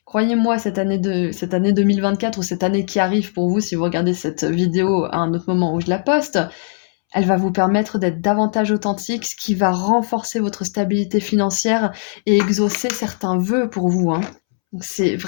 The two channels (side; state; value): right; silent; 67 dB below the other